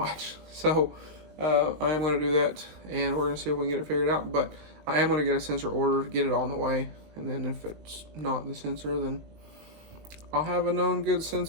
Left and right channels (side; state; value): left; late; 20 ms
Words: So I am going to do that, and we're going to see if we can get it figured out. But I am going to get a sensor ordered, get it on the way, and then if it's not the sensor, then I'll have a known good